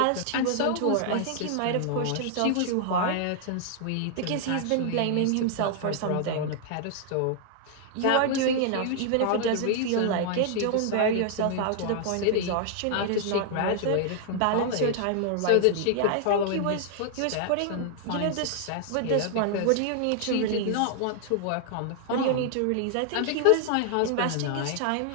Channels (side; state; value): both; different; correlation 0.00